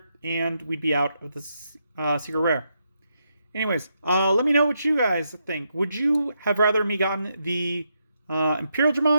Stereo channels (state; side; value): inverted; both; correlation -0.81